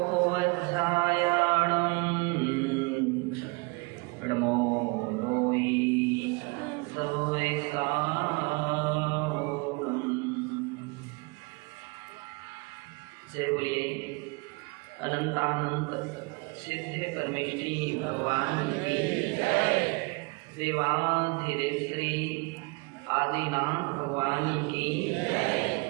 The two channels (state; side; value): quieter; left; 28.7 dB